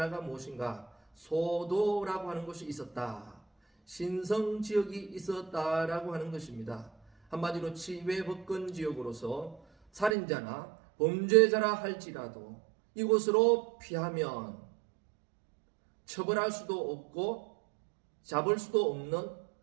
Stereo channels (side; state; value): left; drops out; at 10.2 s